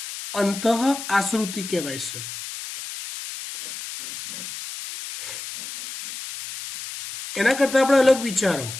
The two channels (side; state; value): left; noise; hiss, 10 dB below the sound